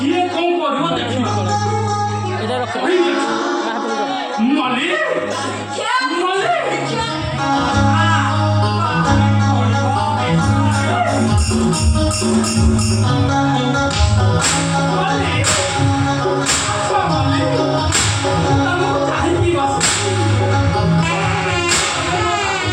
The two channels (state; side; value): identical; both; correlation 1.00